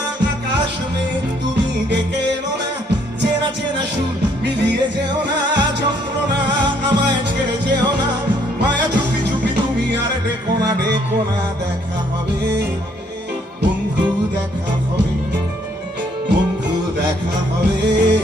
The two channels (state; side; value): normal; both; correlation 0.67